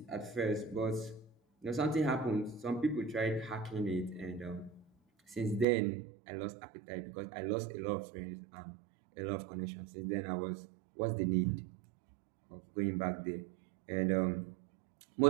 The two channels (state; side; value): drops out; left; at 5.7 s